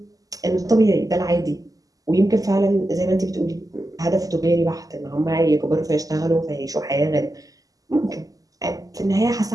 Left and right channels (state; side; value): late; left; 0.17 ms